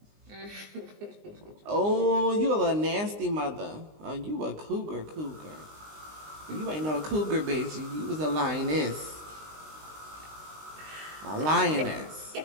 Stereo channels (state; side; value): late; left; 19 ms